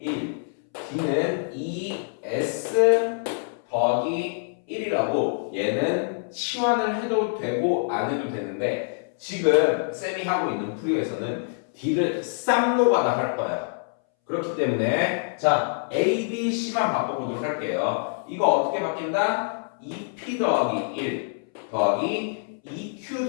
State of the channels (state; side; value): silent; right; 61 dB below the other